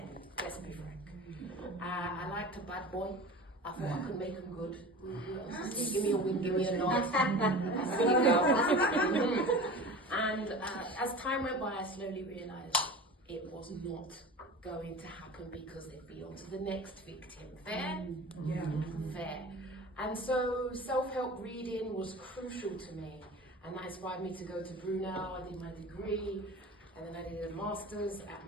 let's be frank. I liked a bad boy. I thought I could make him good. Give me a wink, give me a nod. And as time went by, I slowly realised it was not going to happen because it'd be on to the next victim. Fair? Yeah. Fair. And so self-help reading was crucial to me, and that inspired me to go to Brunel. I did my degree, and then I did a master's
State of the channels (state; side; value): normal; both; correlation 0.35